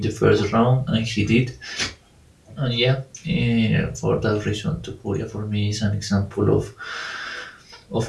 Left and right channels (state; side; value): identical; both; correlation 1.00